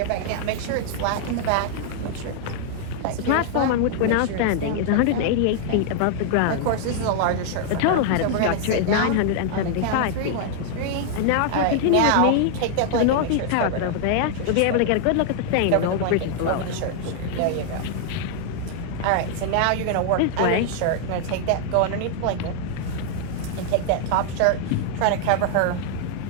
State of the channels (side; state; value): both; different; correlation 0.00